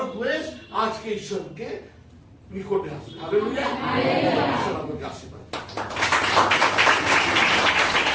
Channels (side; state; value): both; identical; correlation 1.00